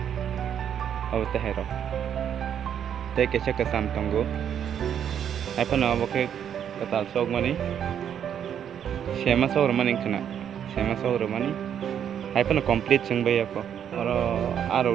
aw tehero te ke chaka sam tongo apa na okay ketal sok mani sema sok mani kena sema sok mani apa na complete sing bay ako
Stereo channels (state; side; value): quieter; left; 9.0 dB